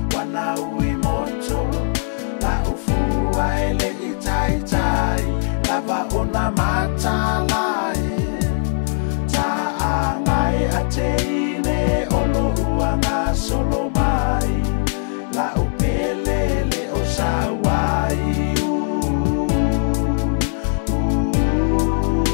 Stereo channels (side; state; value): right; silent; 66 dB below the other